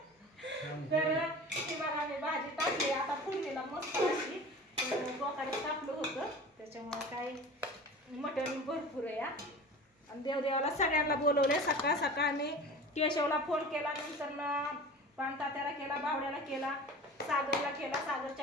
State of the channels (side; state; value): both; normal; correlation 0.37